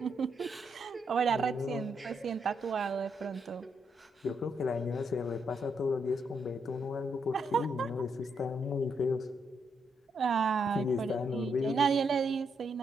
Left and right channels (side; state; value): both; normal; correlation 0.78